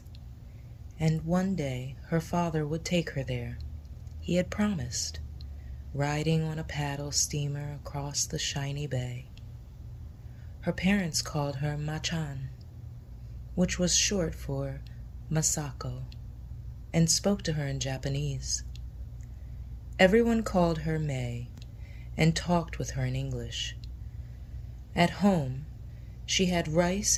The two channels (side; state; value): both; identical; correlation 1.00